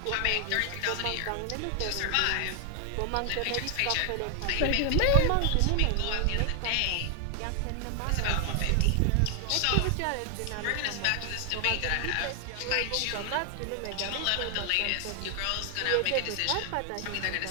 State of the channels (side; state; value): both; different; correlation 0.00